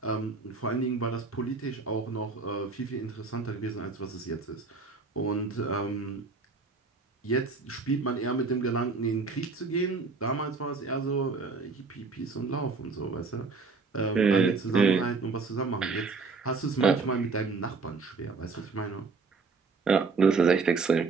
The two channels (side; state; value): left; quieter; 4.4 dB